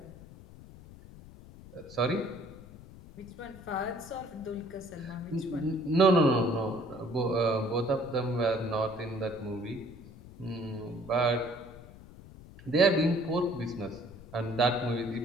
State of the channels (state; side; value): noise; left; rumble, 18 dB below the sound